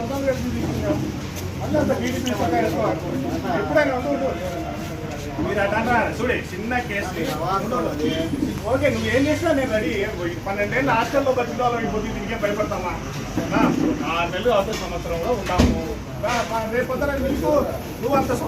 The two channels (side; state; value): both; identical; correlation 1.00